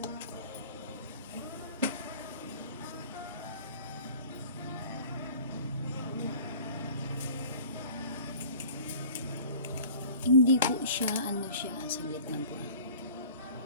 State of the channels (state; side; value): inverted; both; correlation -0.45